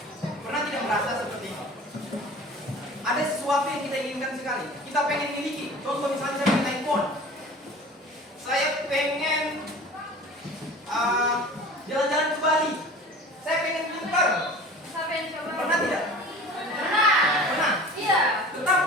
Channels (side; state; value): both; normal; correlation 0.41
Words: pernah tidak merasa seperti ini? Ada sesuatu yang kita inginkan sekali, kita pengen miliki. Contoh misalnya saya pengen handphone, saya pengen jalan-jalan ke Bali, saya pengen pintar. Siapa yang coba? Pernah tidak? Pernah. Pernah. Iya.